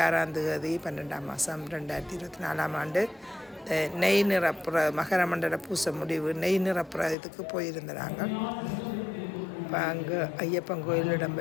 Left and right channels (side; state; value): right; drops out; at 7.2 s